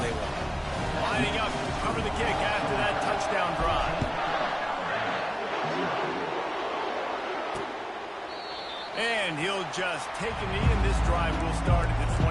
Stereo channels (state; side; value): identical; both; correlation 1.00